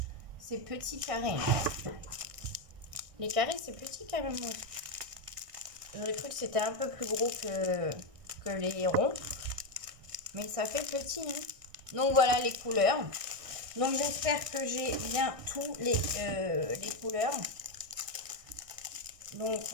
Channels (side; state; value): left; late; 1.6 ms